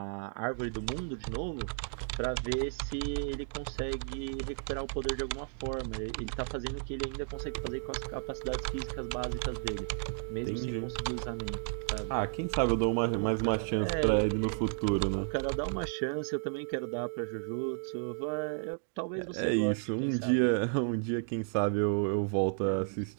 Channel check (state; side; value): silent; left; 55 dB below the other